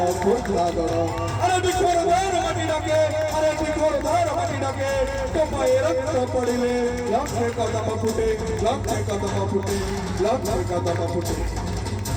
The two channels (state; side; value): identical; both; correlation 1.00